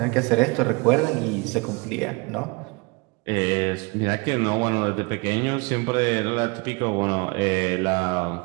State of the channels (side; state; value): left; quieter; 28.5 dB